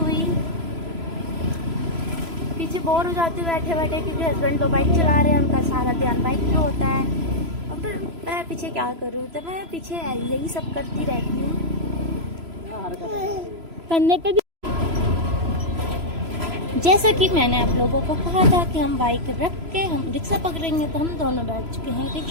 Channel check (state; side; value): late; left; 3.0 ms